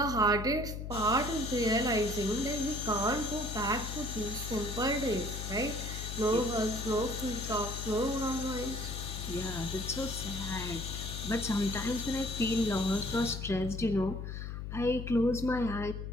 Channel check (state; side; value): noise; left; hum, 6 dB below the sound